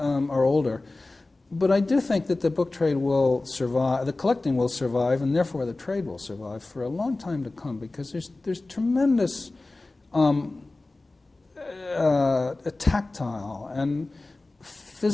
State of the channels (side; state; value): right; quieter; 3.1 dB